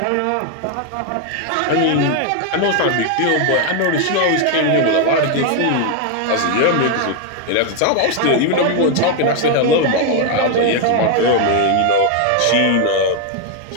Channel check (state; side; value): different; both; correlation 0.01